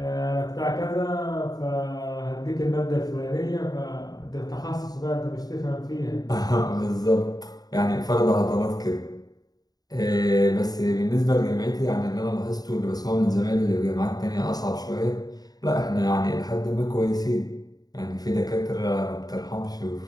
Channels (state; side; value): late; right; 0.19 ms